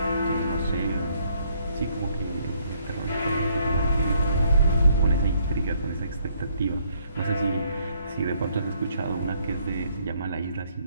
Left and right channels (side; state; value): both; inverted; correlation -0.67